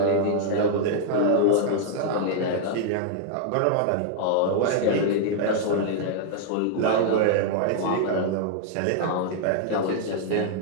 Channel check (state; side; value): different; both; correlation -0.01